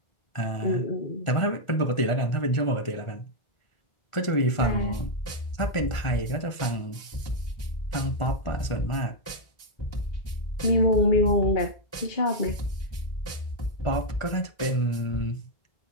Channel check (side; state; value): right; late; 1.4 ms